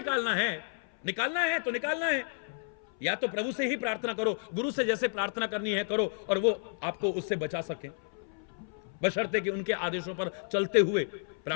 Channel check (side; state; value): right; silent; 57 dB below the other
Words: है तो निकालना है। या तो प्रभु से ही प्रार्थना करो, गुरु से जैसे प्रार्थना करनी है करो, और वो आपको उससे बचा सके, बशर्ते कि उनके आदेशों पर चलते हुए